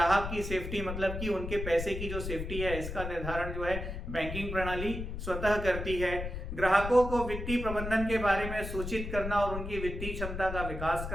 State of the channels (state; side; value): noise; left; rumble, 6 dB below the sound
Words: की सेफ्टी, मतलब कि उनके पैसे की जो सेफ्टी है इसका निर्धारण जो है बैंकिंग प्रणाली स्वतः करती है। ग्राहकों को वित्तीय प्रबंधन के बारे में सूचित करना और उनकी वित्तीय क्षमता का विकास